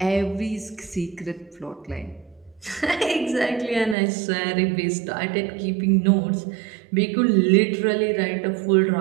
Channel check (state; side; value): drops out; left; at 4.0 s